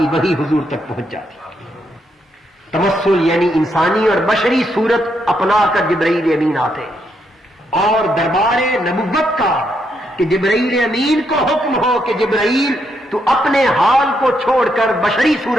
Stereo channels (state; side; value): normal; both; correlation 0.78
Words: وحی حضور تک پہنچ جاتی. تمثل یعنی انسانی اور بشری صورت اپنا کر جبرائیل امین آتے اور دربار نبوت کا کہ جبرائیل امین کو حکم ہو کہ جبرائیل تو اپنے حال کو چھوڑ کر بشری